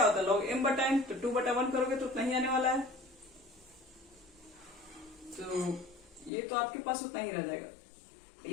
होता है, log m बटा n, तो 2 बटा 1 करोगे तो उतना ही आने वाला है। तो ये तो आपके पास उतना ही रह जाएगा।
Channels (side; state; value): right; drops out; at 6.3 s